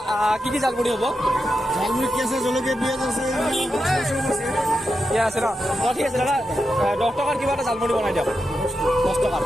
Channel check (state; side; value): normal; both; correlation 0.88